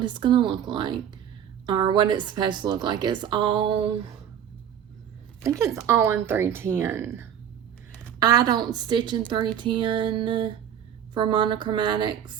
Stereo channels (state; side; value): quieter; left; 9.3 dB